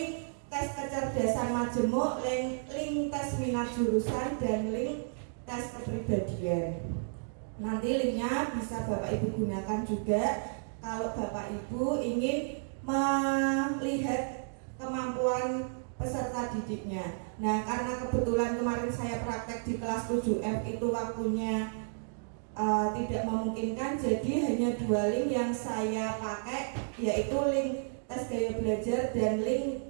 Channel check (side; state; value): left; silent; digital silence